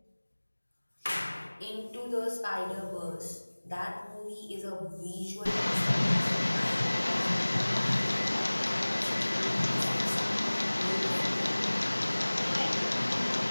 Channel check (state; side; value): inverted; both; correlation -1.00